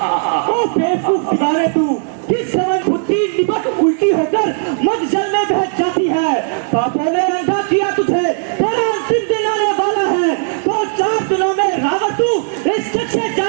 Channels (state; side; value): silent; left; 60 dB below the other